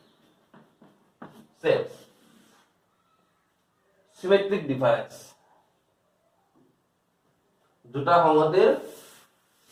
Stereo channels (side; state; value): both; identical; correlation 1.00